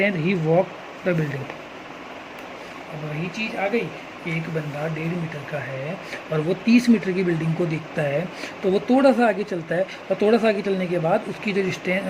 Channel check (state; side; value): identical; both; correlation 1.00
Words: he walk the building. अब वही चीज़ आ गई, एक बंदा 1.5 मीटर का है और वो 30 मीटर की बिल्डिंग को देखता है, तो वो थोड़ा सा आगे चलता है और थोड़ा सा आगे चलने के बाद उसकी जो